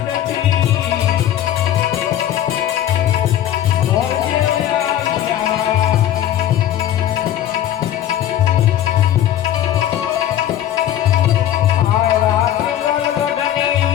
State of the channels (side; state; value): right; quieter; 11.6 dB